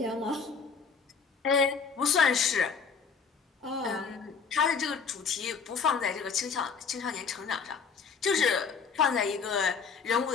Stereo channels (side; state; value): right; quieter; 5.6 dB